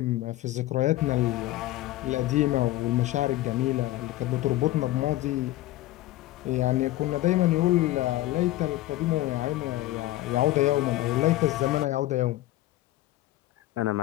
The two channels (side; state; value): right; quieter; 16.1 dB